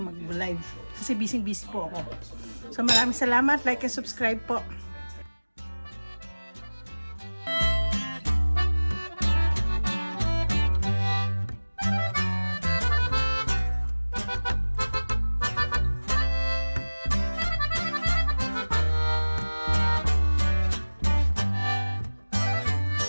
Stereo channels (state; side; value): inverted; both; correlation -1.00